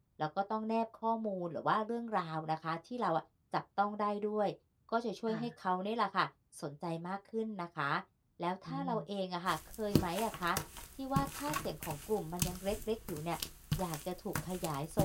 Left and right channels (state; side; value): identical; both; correlation 1.00